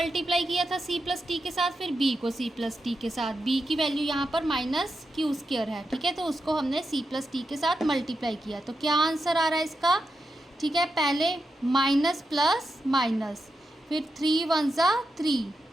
किया था c प्लस t के साथ, फिर b को c प्लस t के साथ, b की वैल्यू यहाँ पर -q स्क्वायर है, ठीक है। तो उसको हमने c प्लस t के साथ मल्टीप्लाई किया, तो क्या आंसर आ रहा है इसका, ठीक है। पहले माइनस प्लस माइनस, फिर 3 1 = 3,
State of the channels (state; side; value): normal; both; correlation 0.87